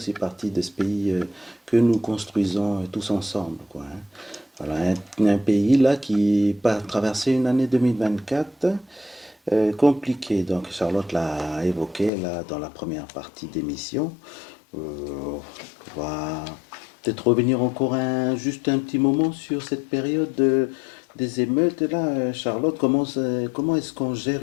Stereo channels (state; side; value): drops out; right; at 12.1 s